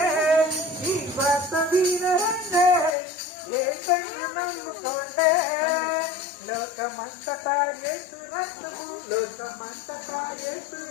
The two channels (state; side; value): drops out; right; at 3.0 s